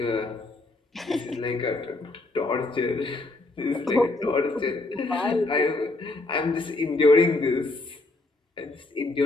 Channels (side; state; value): right; quieter; 3.1 dB